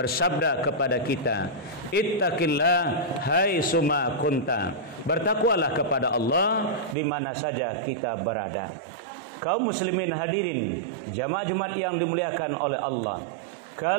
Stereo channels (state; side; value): drops out; left; at 7.0 s